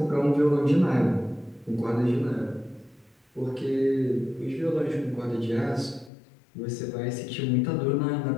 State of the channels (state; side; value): drops out; right; at 6.1 s